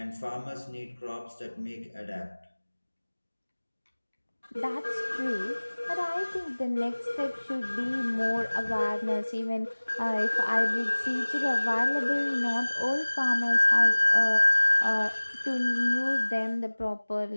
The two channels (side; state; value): both; inverted; correlation -1.00